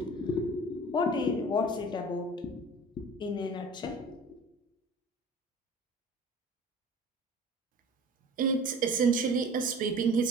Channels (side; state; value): both; normal; correlation 0.42